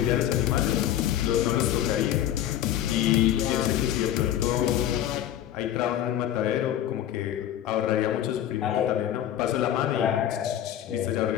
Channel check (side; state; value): right; quieter; 11.5 dB